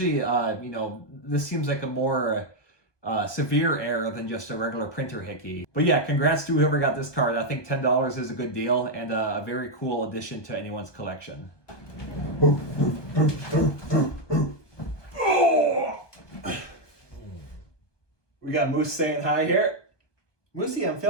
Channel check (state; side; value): late; right; 1.2 ms